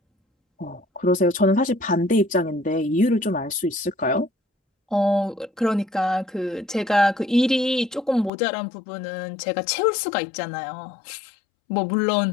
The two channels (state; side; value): drops out; right; at 8.3 s